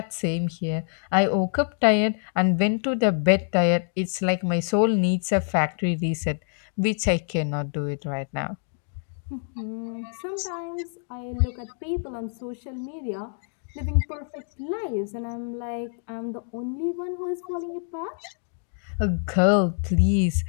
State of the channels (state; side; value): silent; right; digital silence